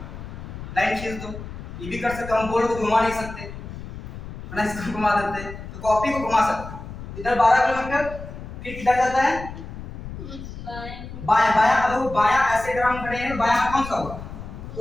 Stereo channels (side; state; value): left; noise; rumble, 11 dB below the sound